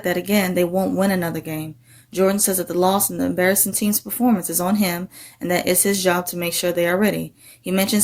that again, they won't win another game. Jordan says that the loss and the embarrassing team's performance is on him and that it's his job to make sure they are ready. He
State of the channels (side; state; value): both; identical; correlation 1.00